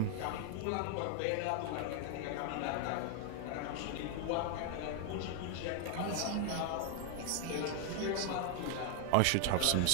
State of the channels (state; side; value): different; both; correlation 0.00